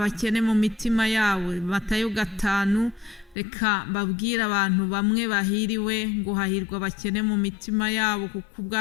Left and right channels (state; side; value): drops out; right; at 3.4 s